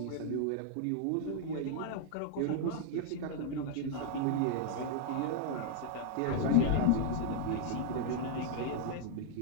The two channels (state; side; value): different; both; correlation -0.01